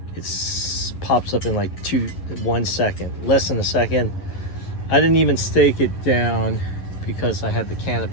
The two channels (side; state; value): right; late; 11 ms